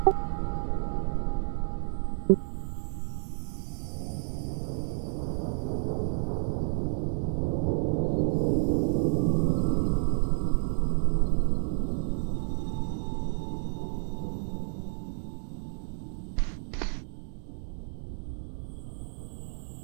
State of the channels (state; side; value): silent; left; digital silence